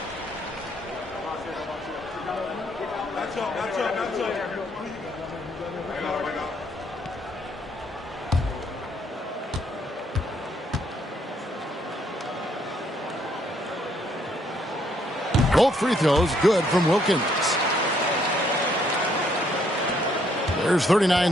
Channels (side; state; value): both; normal; correlation 0.69